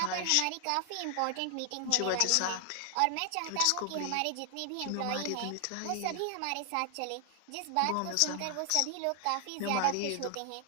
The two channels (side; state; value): both; different; correlation 0.00